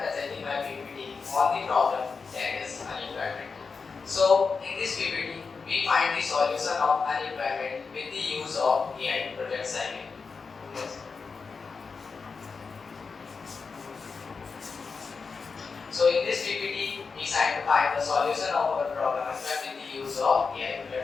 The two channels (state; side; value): quieter; right; 4.9 dB